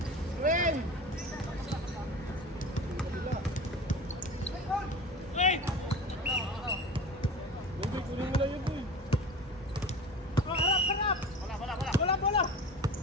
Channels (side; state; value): both; normal; correlation 0.34